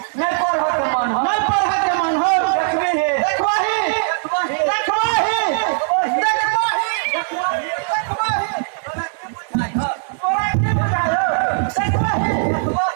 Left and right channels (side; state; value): left; silent; 62 dB below the other